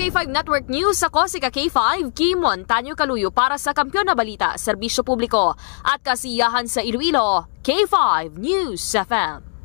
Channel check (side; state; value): right; silent; digital silence